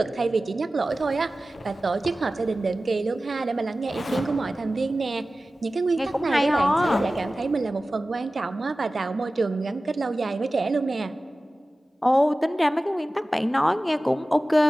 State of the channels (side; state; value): both; normal; correlation 0.96